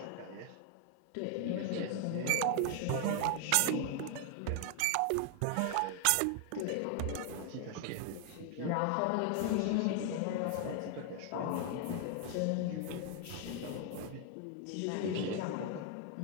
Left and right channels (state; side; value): different; both; correlation 0.00